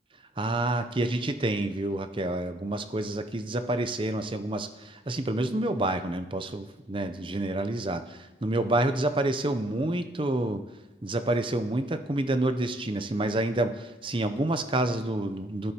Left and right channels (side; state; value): both; normal; correlation 0.66